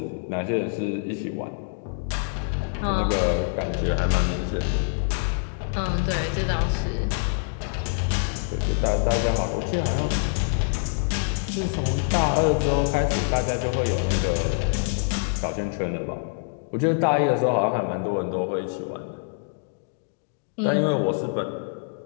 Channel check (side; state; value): right; silent; digital silence